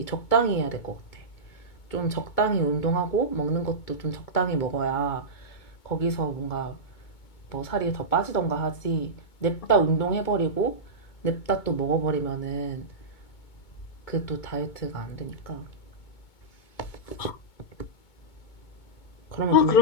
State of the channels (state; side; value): late; right; 2.2 ms